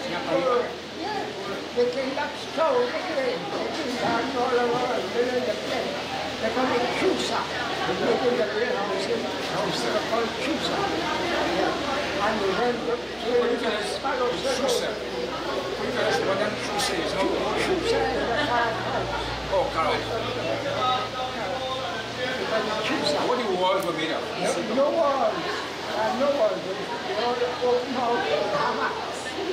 they came up stove again, they came down all over, they were in the place. They call it Chusa. They live in the warehouse in they call it Chusa. And we went to Sparrow Circle. What that Chusa is? Chusa is the carrot house. Oh, carrot. What the walls were made of? No walls. No walls. They all open out hammocks.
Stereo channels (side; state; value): both; identical; correlation 1.00